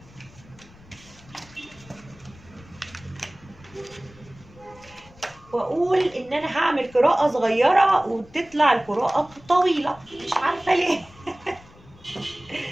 واقول ان انا هعمل قراءة صغيرة وتطلع القراءة طويلة، مش عارفة ليه.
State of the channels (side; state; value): left; noise; rumble, 24 dB below the sound